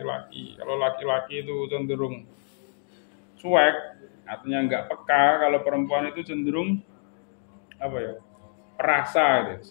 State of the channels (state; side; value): silent; right; 61 dB below the other